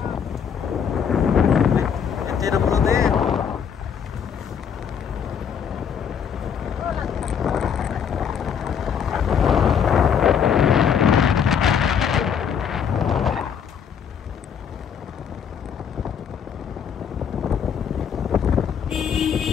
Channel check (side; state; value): right; quieter; 7.6 dB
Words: Tidak perlu deh.